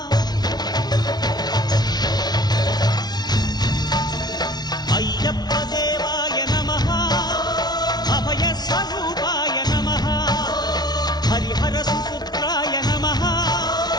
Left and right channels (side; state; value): right; late; 0.19 ms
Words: అయ్యప్ప దేవాయ నమః. అభయస్వరూపాయ నమః. హరిహర సుపుత్రాయ నమః.